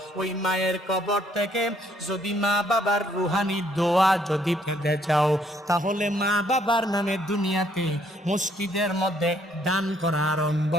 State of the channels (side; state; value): both; normal; correlation 0.67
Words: ওই মায়ের কবর থেকে যদি মা বাবার রুহানি দোয়া যদি পেতে চাও, তাহলে মা বাবার নামে দুনিয়াতে মসজিদের মধ্যে দান করা আরম্ভ